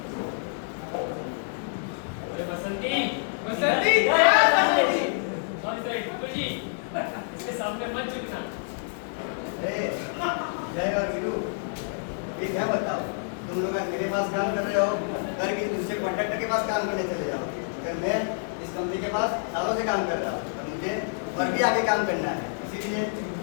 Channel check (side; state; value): right; silent; digital silence